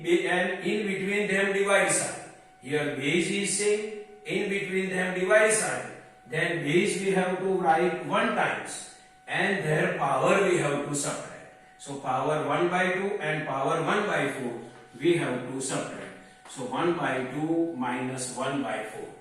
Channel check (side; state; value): both; identical; correlation 1.00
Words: in between them divide sign. Here base is same, in between them divide sign. Then base we have to write 1 times and their power we have to subtract. So power 1 by 2 and power 1 by 4 we have to subtract. So 1 by 2 minus 1 by 4.